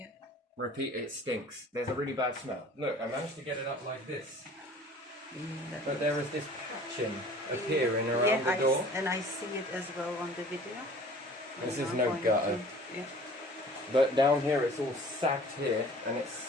Repeat, it stinks. There's a really bad smell. Look, I managed to get it up like this. But there is this patching appearing around the door. And I see it as well on the video. This is no gutter. Yeah. But down here it's all sagged here, and it's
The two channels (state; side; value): normal; both; correlation 0.47